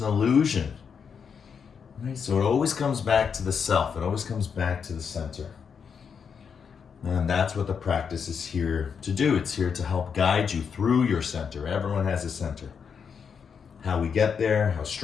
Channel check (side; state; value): right; quieter; 6.6 dB